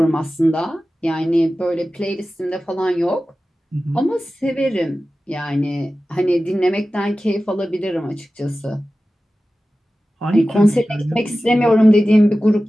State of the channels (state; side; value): normal; both; correlation 0.95